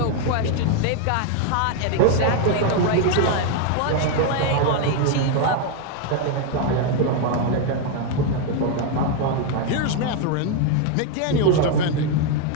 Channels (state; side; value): different; both; correlation 0.01